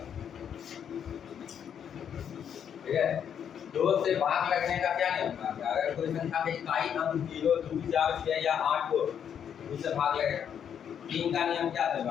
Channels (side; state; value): right; quieter; 8.4 dB